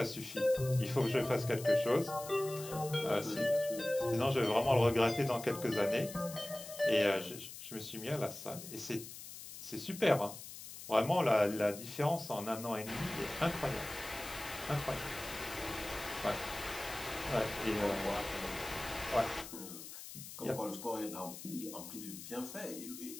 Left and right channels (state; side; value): noise; left; hiss, 12 dB below the sound